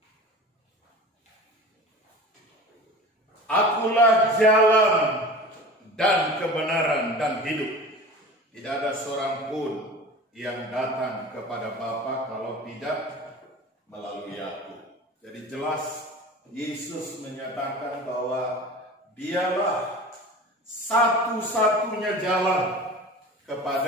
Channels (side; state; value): both; normal; correlation 0.37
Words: Akulah jalan dan kebenaran dan hidup. Tidak ada seorang pun yang datang kepada Bapa kalau tidak melalui aku. Jadi jelas Yesus menyatakan bahwa dialah satu-satunya jalan